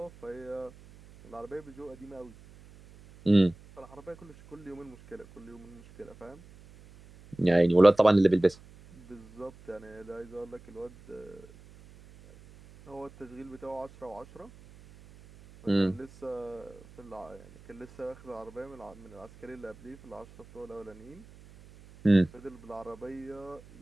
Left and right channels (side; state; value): right; noise; hum, 22 dB below the sound